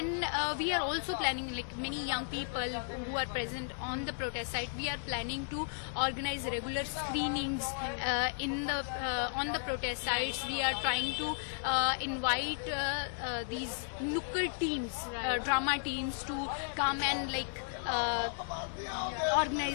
we are also planning, like many young people who are present on the protest site, we are planning to organize regular screenings in the on the protest sites. We are trying to invite these nukkad teams, drama teams to come and like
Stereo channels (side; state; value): right; silent; 55 dB below the other